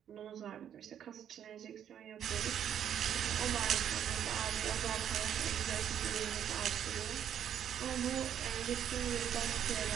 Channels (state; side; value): quieter; left; 9.5 dB